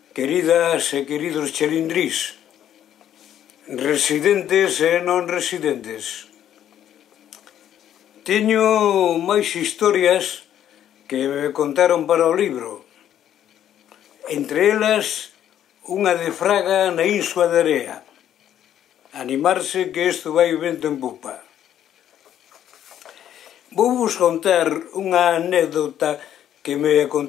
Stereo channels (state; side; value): quieter; right; 10.6 dB